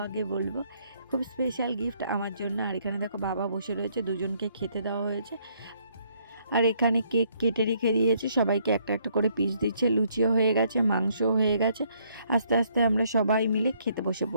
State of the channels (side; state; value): both; inverted; correlation -0.68